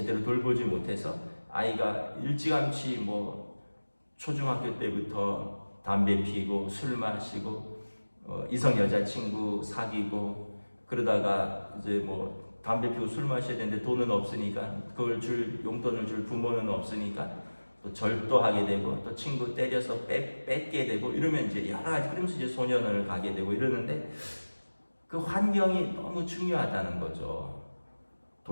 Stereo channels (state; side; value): inverted; both; correlation -1.00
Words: 돌보지 못해서 아이가 일찌감치 뭐 초중학교 때부터 담배 피고 술 마시고 이성 여자친구 사귀고 그러다가 이제 뭐 담배 피고 술 마셔야 되는데 돈은 없으니까 그걸 용돈을 줄 부모는 없으니까 또 절도하게 되고 또 친구 때려서 뺏게 되고 이러면 이제 여러 가지, 그러면서 이제 소년원을 가게 되고 이러는데 그 환경이 너무 중요하다는 거죠.